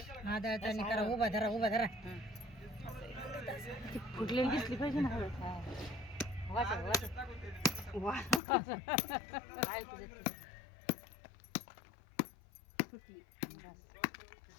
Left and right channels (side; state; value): right; drops out; at 8.4 s